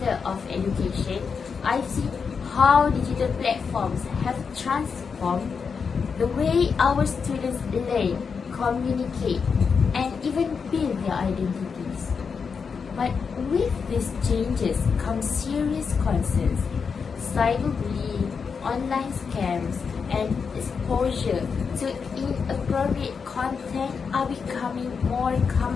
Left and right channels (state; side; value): quieter; right; 5.8 dB